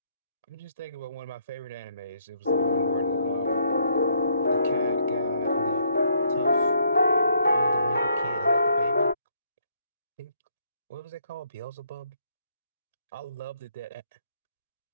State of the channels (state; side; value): inverted; both; correlation -0.70